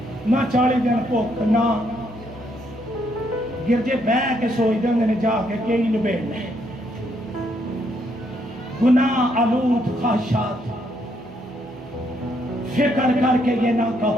نہ 40 دن بھوک، نہ گرجے بہ کے سوچ دیں جا کے کئی نبیڑنے، گناہ آلود خواہشات، فکر کر کے یہ نہ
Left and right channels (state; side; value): normal; both; correlation 0.73